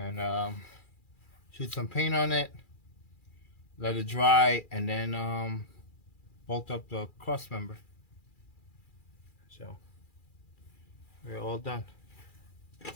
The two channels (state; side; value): late; right; 2.4 ms